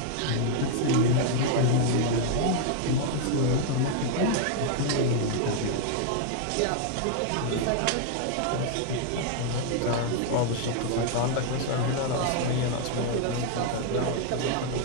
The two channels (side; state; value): both; different; correlation 0.00